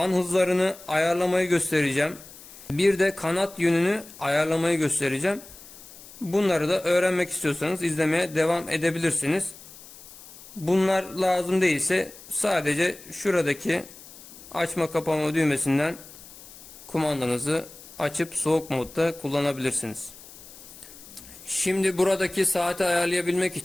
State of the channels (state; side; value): noise; left; hiss, 18 dB below the sound